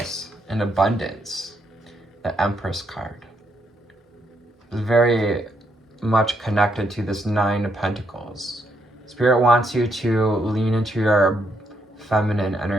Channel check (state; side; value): normal; both; correlation 0.76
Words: and abundance. The Empress card is very much connected to this 9 of Pentacles. Spirit wants you to lean into your feminine